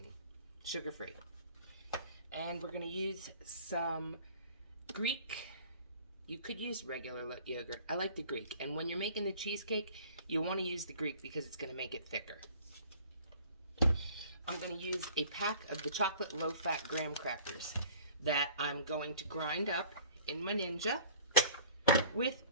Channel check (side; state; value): both; inverted; correlation -0.49